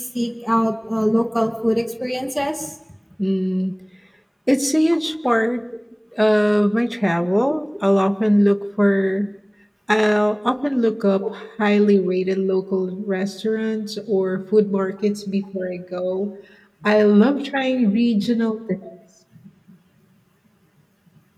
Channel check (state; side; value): identical; both; correlation 1.00